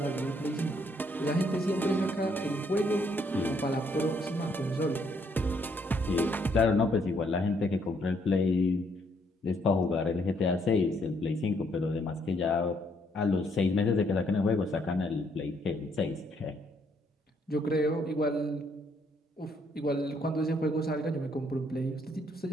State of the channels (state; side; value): normal; both; correlation 0.70